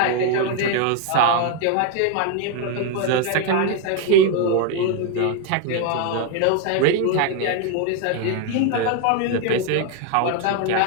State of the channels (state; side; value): different; both; correlation 0.01